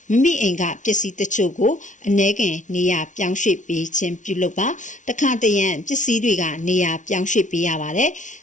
မိမိအိမ်ကပစ္စည်းတချို့ကိုအ ਨੇ ခင်နေရာပြောင်းရွှေ့ပေးခြင်းပြုလုပ်ပါတခါတရံပစ္စည်းတွေကနေရာပြောင်းရွှေ့ပေးရပါတယ်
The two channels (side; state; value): right; late; 0.37 ms